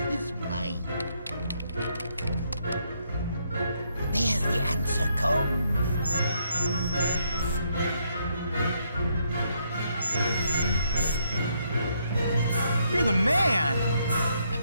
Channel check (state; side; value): inverted; both; correlation -0.74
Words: his mind. There the answer comes. You're the man! I've